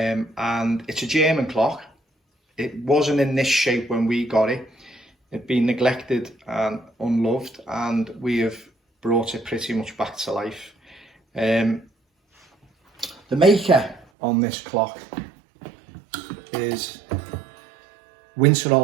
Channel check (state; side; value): drops out; left; at 14.1 s